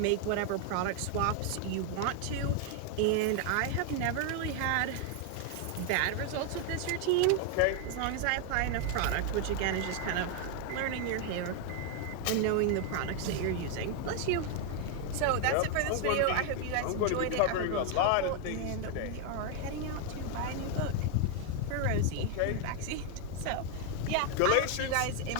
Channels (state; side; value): different; both; correlation 0.00